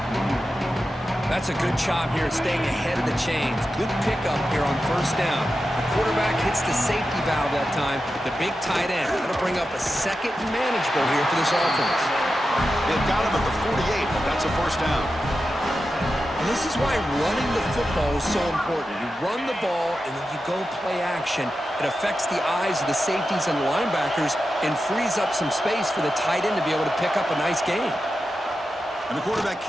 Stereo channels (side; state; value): both; normal; correlation 0.91